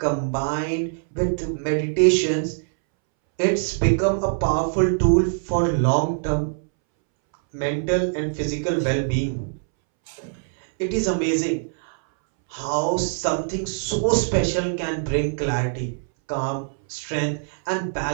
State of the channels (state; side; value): silent; left; 63 dB below the other